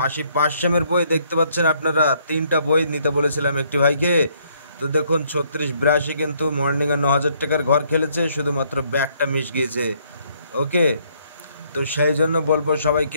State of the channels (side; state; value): both; inverted; correlation -0.68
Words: 80, 500-এর বই দেখতে পাচ্ছেন আপনারা। 3টা বই নিতে বলেছিলাম একটি ভাইকে। তো দেখুন 36, 82 কিন্তু মর্নিংয়ে 9000 টাকার ঘর খেলেছে, শুধুমাত্র ব্যাকটা মিস গিয়েছে। ওকে, তো সেই জন্য বলবো